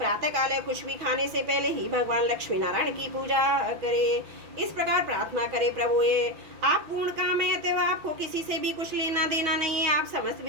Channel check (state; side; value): late; left; 6.2 ms